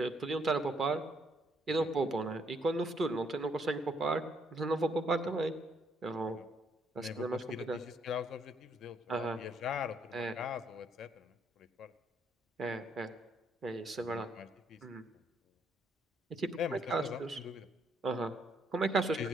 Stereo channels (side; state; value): both; normal; correlation 0.70